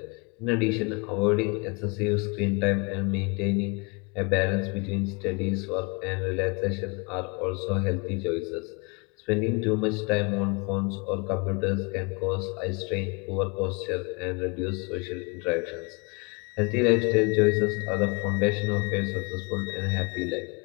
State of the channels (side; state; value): right; quieter; 30.2 dB